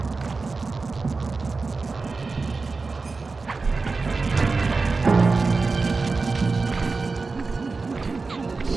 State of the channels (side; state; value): left; quieter; 4.1 dB